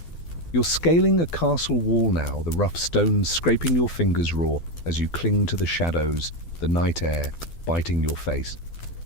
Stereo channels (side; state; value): right; late; 12 ms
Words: You're scaling a castle wall now, the rough stones scraping your fingers raw as you cling to the shadows, the night air biting your face.